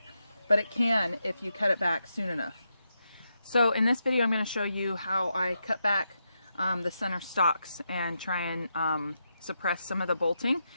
but it can if you cut it back soon enough. So in this video I'm going to show you how I cut back the center stalks and try and suppress some of the bolting.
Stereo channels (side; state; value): both; inverted; correlation -0.85